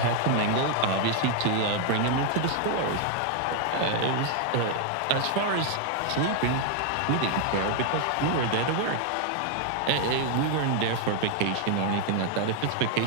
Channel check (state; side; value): different; both; correlation 0.00